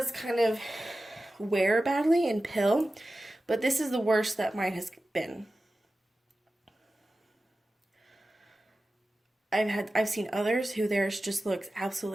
kind of wear badly and pill, but this is the worst that mine has been. I've seen others who theirs just looks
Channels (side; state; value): both; normal; correlation 0.94